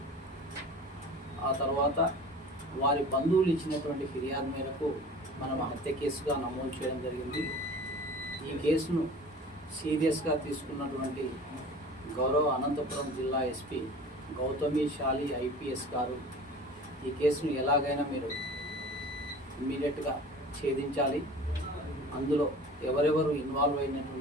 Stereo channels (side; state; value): both; normal; correlation 0.41